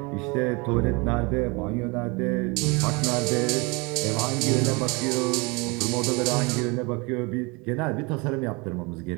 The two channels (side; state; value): left; quieter; 28.0 dB